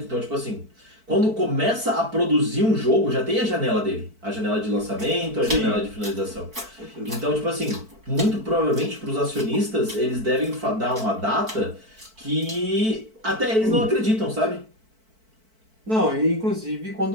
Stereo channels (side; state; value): left; late; 4.5 ms